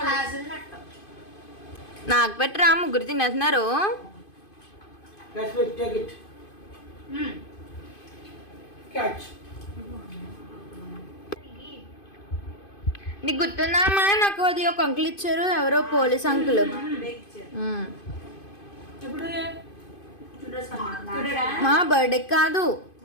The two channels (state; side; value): late; right; 2.5 ms